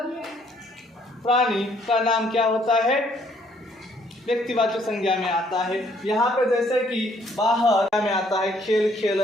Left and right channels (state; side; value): normal; both; correlation 0.65